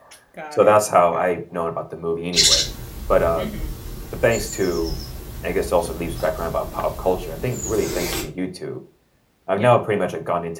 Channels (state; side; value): identical; both; correlation 1.00